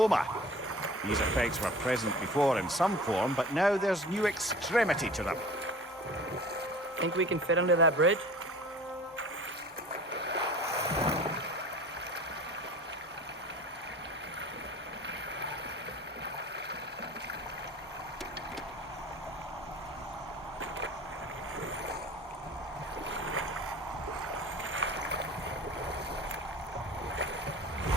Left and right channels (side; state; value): both; normal; correlation 0.43